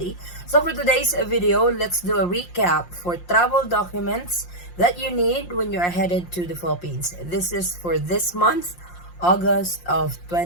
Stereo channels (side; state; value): right; late; 5.7 ms